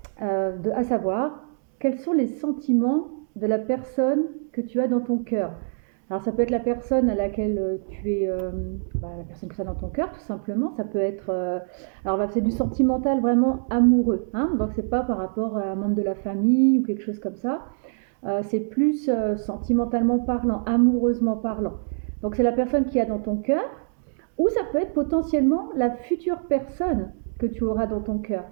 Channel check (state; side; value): silent; left; digital silence